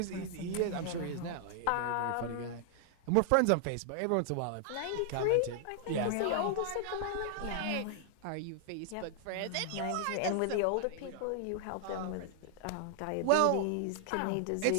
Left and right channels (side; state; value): both; different; correlation 0.00